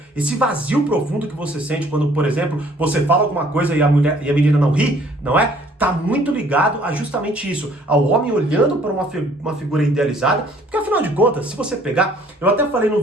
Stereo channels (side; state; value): both; normal; correlation 0.59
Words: esse vazio profundo que você sente quando, por exemplo, você fala alguma coisa e a menina não ri, não é? Tá muito ligado a justamente isso, ao homem olhando para uma figura idealizada, porque afinal de contas, se você pegar, eu até falei no